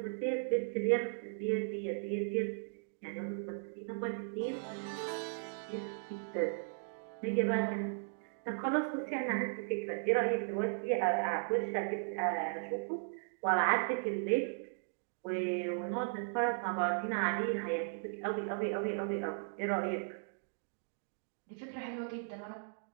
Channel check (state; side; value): silent; left; digital silence